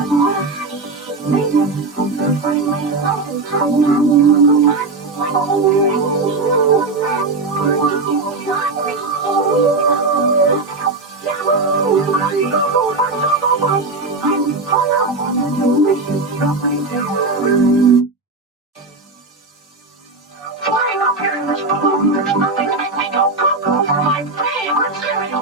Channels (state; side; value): quieter; left; 3.6 dB